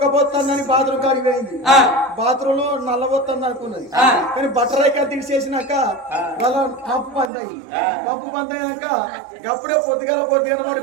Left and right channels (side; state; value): left; drops out; at 7.3 s